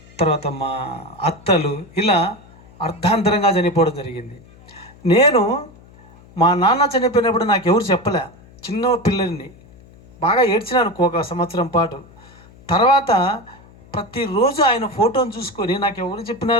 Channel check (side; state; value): left; noise; hum, 24 dB below the sound